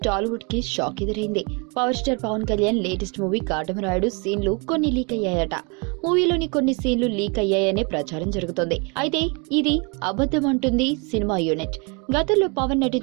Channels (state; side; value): quieter; left; 32.2 dB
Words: టాలీవుడ్ కి షాక్ ఎదురైంది. Power star Pawan Kalyan latest movie Katamarayudu సీన్లు కొన్ని లీక్ అయ్యాయట. మూవీలోని కొన్ని సీన్లు లీక్ అయ్యాయనే ప్రచారం జరుగుతోంది. అయితే ఇది అబద్ధం అంటుంది సినిమా యూనిట్. గతంలో పవన్